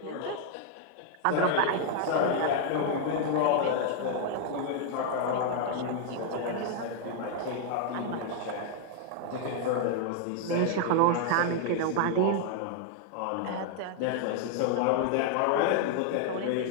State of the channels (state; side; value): different; both; correlation 0.00